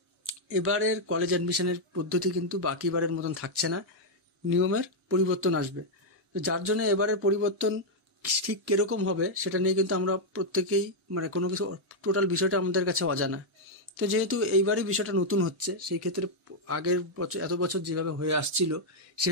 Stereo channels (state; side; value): normal; both; correlation -0.02